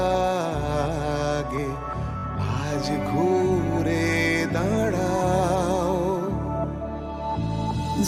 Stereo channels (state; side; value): identical; both; correlation 1.00